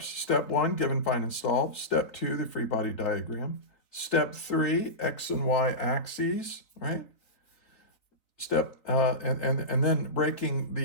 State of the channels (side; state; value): right; late; 3.9 ms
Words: Step 1, given, find, and solve. Step 2, the free body diagram. Step 3, x and y axes, right? Step, and then breaking